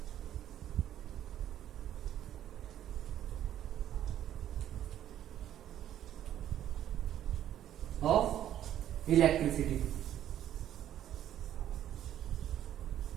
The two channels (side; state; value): left; quieter; 11.3 dB